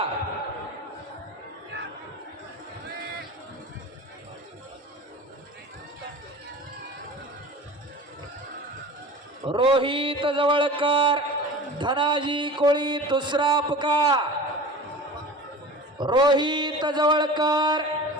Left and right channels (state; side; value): normal; both; correlation 0.37